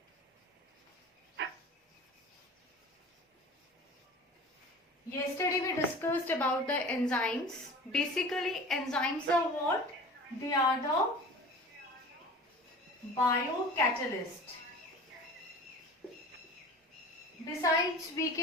Yesterday we discussed about the enzymes. Basically, enzymes are what? They are the biocatalyst. Besides, we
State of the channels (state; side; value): normal; both; correlation 0.39